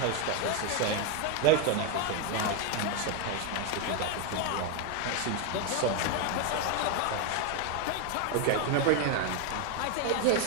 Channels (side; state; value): both; different; correlation 0.01